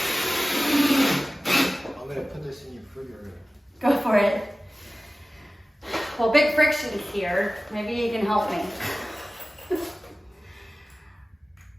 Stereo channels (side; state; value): both; normal; correlation 0.96